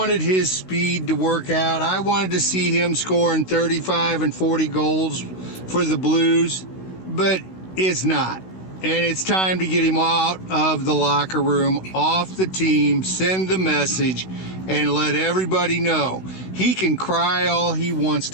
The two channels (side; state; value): right; late; 16 ms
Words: his speed to work out. I wanted to see him scoring 35 and 40 goals for the Blues, but it's not. And it's time to get him out of the locker room, off the team, send the message, and let everybody know he can cry all he wants